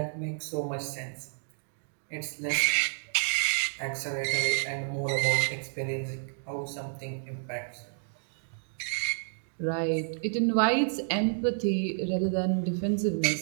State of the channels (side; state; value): left; silent; digital silence